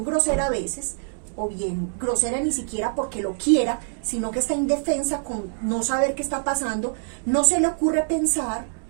grosera a veces, o bien grosera ni siquiera porque lo quiera, sino que está indefensa con no saber qué está pasando, no se le ocurre pensar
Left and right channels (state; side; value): silent; left; digital silence